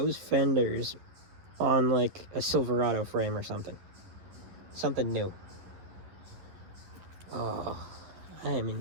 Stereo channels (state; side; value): late; left; 11 ms